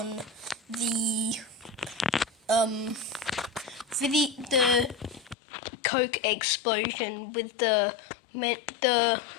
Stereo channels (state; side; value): drops out; right; at 5.4 s